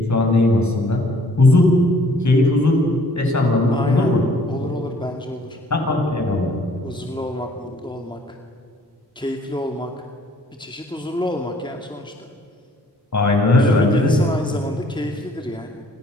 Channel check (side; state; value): both; normal; correlation 0.59